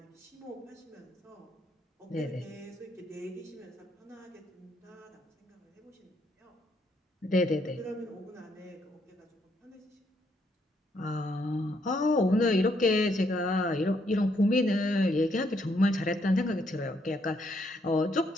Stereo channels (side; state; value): both; normal; correlation 0.73